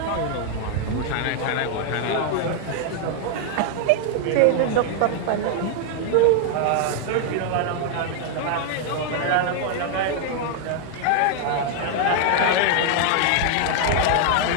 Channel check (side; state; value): both; different; correlation 0.00